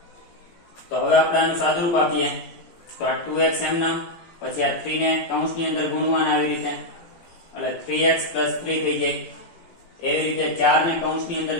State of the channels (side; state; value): right; late; 18 ms